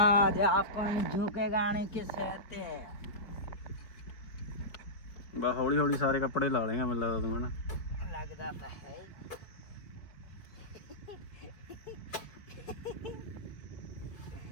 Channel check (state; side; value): late; right; 4.6 ms